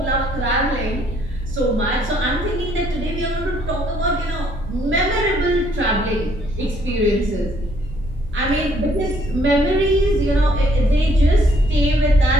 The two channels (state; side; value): normal; both; correlation 0.66